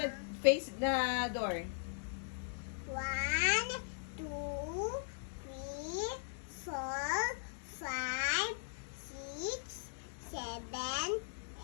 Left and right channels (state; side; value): silent; right; digital silence